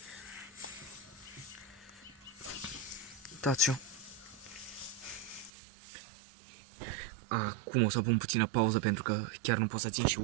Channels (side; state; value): left; drops out; at 5.5 s